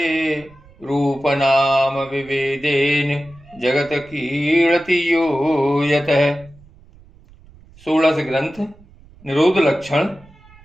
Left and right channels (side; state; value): right; noise; rumble, 25 dB below the sound